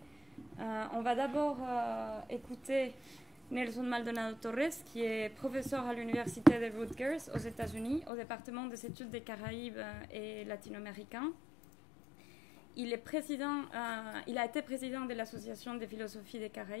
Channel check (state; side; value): drops out; right; at 8.1 s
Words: On va d'abord écouter Nelson Maldonado Torres, qui est professeur à l'Université de Rutgers aux États-Unis, au département des études des Caraïbes et latino-américains. Il a été président de l'Association des philosophies des